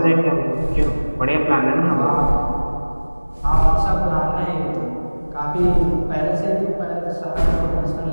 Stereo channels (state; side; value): inverted; both; correlation -1.00